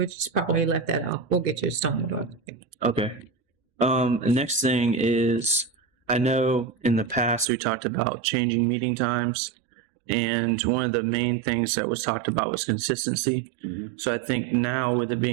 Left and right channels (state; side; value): drops out; left; at 7.5 s